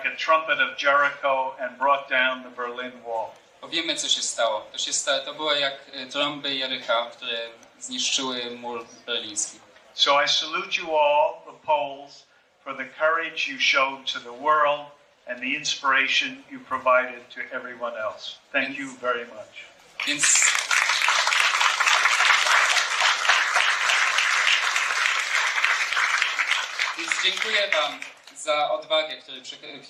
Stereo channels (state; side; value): identical; both; correlation 1.00